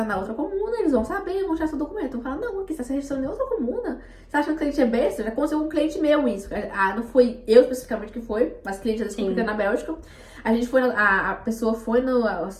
na outra comuna, eles vão saber, vão tirar seu documento. Vão falar, não, aqui você está se registrando em outra comuna. Você acha que o cliente é besta? Já aconteceu com um cliente meu isso. Ah, não foi eu especificamente que foi, mas cliente já descobriu na Bélgica. A gente foi, a pessoa foi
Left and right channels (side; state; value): both; identical; correlation 1.00